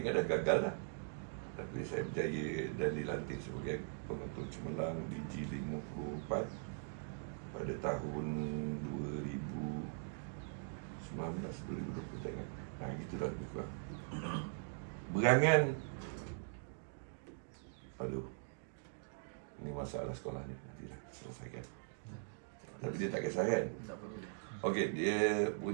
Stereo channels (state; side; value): silent; left; digital silence